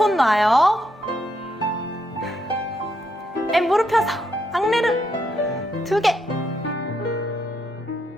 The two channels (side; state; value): both; normal; correlation 0.78